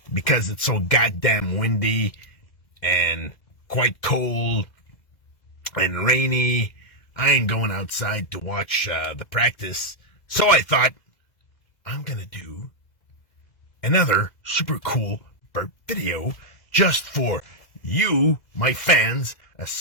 because it's so goddamn windy and quite cold and rainy, I ain't going outside to watch the practice. So I thought, I'm gonna do another super cool burp video just for you, my fans,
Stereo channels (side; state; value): right; late; 2.0 ms